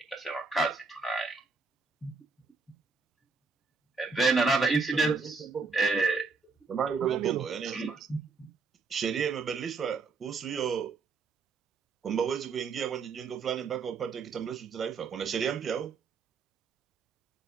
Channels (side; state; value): left; quieter; 4.6 dB